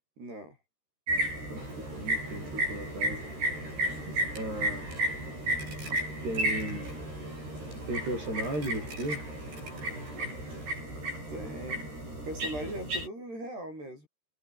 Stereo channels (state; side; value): late; left; 13 ms